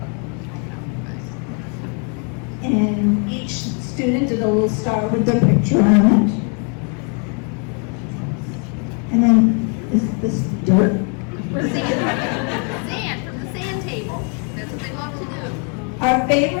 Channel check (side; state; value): right; quieter; 39.0 dB